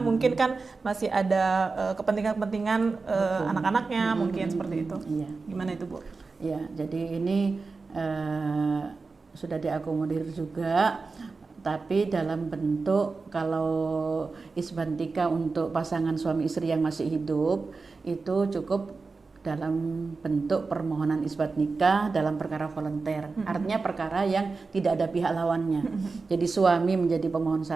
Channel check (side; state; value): left; quieter; 4.2 dB